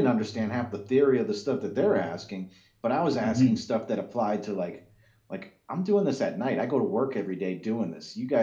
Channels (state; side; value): identical; both; correlation 1.00